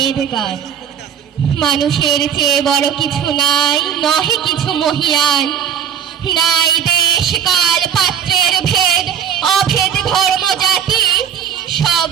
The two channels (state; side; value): quieter; left; 8.4 dB